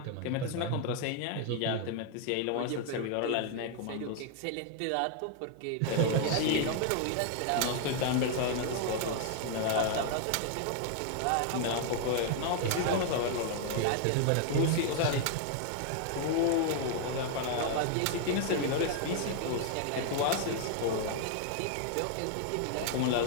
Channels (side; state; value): both; different; correlation 0.00